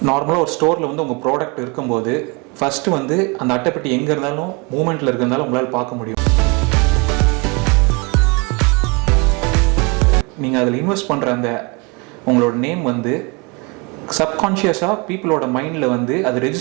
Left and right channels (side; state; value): left; quieter; 29.7 dB